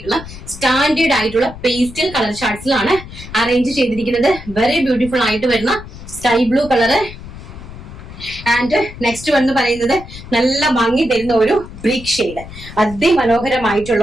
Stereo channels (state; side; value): noise; left; rumble, 14 dB below the sound